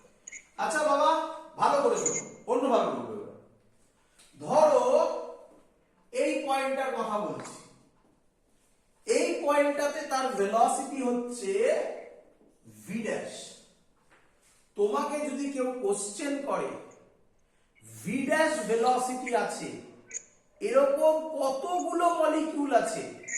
আচ্ছা বাবা ভালো করে শোনো, অন্যভাবে বলবো। ধরো এই পয়েন্টটার কথা বলছি, এই পয়েন্টটাতে তার ভেলোসিটি হচ্ছে v ড্যাশ। তোমাকে যদি কেউ কোশ্চেন করে v ড্যাশ ভেলোসিটি আছে, এরকম কতগুলো মলিকিউল আছে,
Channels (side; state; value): both; identical; correlation 1.00